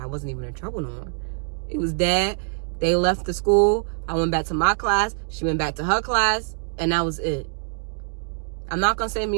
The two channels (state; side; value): silent; left; digital silence